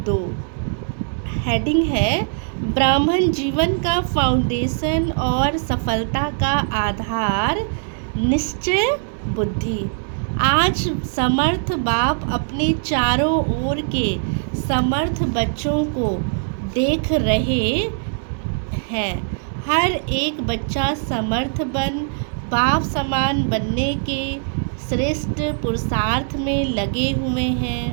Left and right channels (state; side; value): silent; left; digital silence